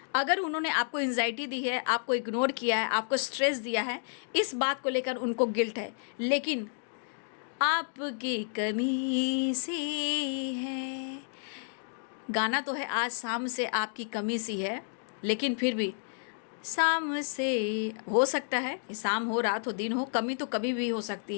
अगर उन्होंने आपको एंजाइटी दी है, आपको इग्नोर किया है, आपको स्ट्रेस दिया है, इस बात को लेकर उनको गिल्ट है। लेकिन आपकी कमी से है, गाना तो है आज शाम से आपकी कमी सी है, लेकिन फिर भी शाम से हो सकता है, शाम हो, रात हो, दिन हो, कमी तो कभी भी हो सकती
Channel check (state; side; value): silent; right; digital silence